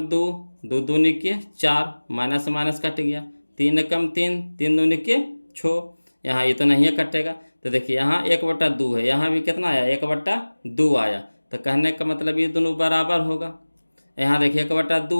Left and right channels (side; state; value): both; inverted; correlation -1.00